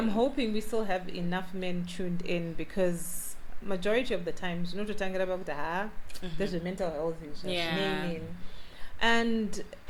in. hoping we still have enough men tuned in because majority of the times, you know, to tangira about there's a mental health issue. Yeah. And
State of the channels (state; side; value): identical; both; correlation 1.00